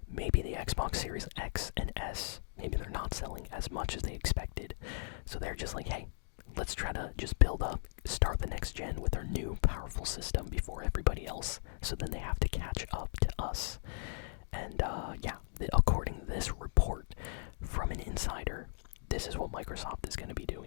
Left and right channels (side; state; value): right; silent; digital silence